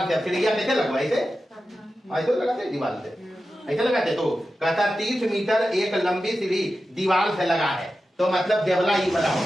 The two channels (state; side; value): normal; both; correlation 0.92